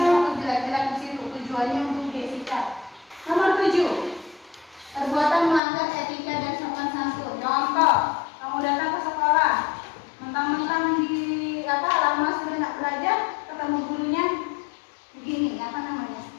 status jelek-jelek di situ, tujuannya untuk Jessica. Nomor 7, perbuatan melanggar etika dan sopan santun. Contoh, kamu datang ke sekolah, mentang-mentang di lama sudah nak belajar, ketemu gurunya begini, apa namanya?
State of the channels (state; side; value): drops out; right; at 5.6 s